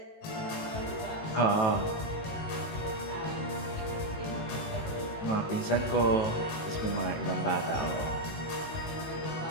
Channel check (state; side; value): late; right; 18 ms